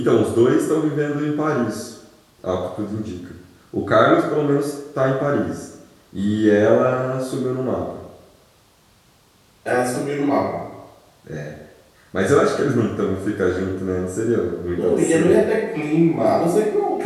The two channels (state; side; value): identical; both; correlation 1.00